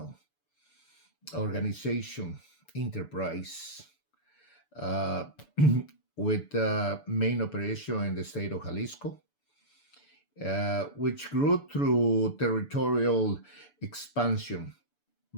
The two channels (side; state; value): right; late; 6.9 ms